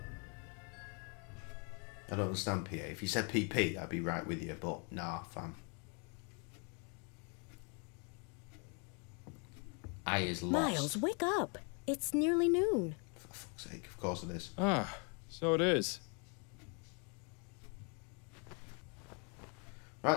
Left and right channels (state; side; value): quieter; right; 36.3 dB